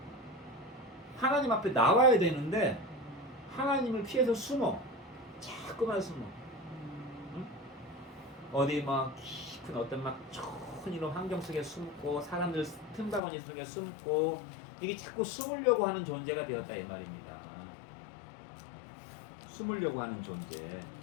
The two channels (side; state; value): right; drops out; at 13.2 s